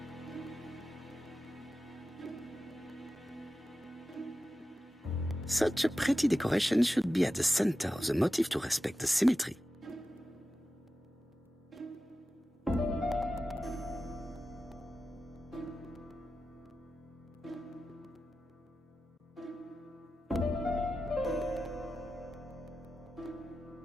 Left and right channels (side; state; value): both; normal; correlation 0.93